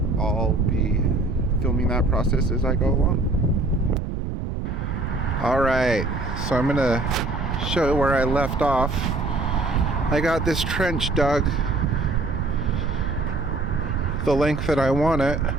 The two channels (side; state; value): right; noise; rumble, 4 dB below the sound